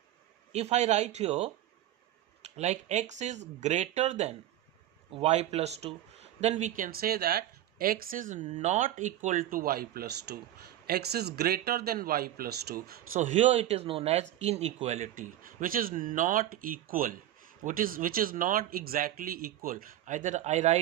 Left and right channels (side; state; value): left; quieter; 13.0 dB